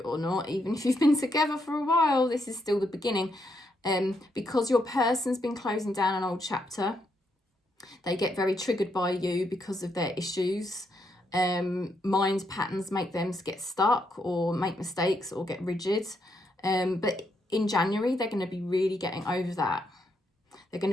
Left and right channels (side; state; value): both; normal; correlation 0.78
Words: or not. Even if you've been together for a while, this is still the beginning. Because your person's been closing down an old chapter. They get very triggered by you because of their issues. Mind patterns make them get stuck or make mistakes or get rigid. But in January, they're going to be really getting over that. They're going